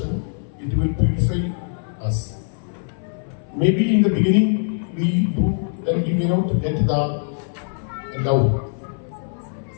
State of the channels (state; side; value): silent; right; 64 dB below the other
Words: it will purify us. Maybe in the beginning we do, then we may not get the love.